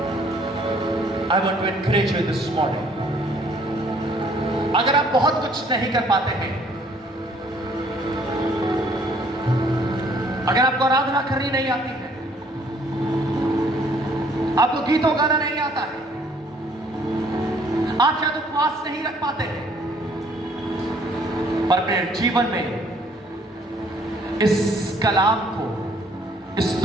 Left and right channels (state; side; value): normal; both; correlation 0.61